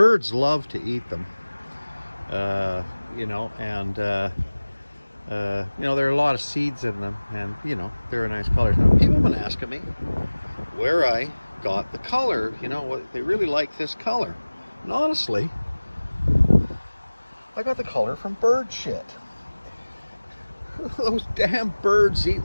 love to eat them. There are a lot of seeds in them, and they're a nice color. Now, people have been asking me where I got the color. They really like this color. And honestly, I got the color from bird shit. Those damn birds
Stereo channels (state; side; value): inverted; both; correlation -1.00